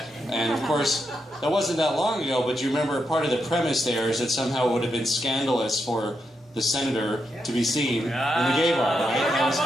And of course, that wasn't that long ago. But you remember part of the premise there is that somehow it would have been scandalous for the senator to be seen in the gay bar, right? That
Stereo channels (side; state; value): both; normal; correlation 0.83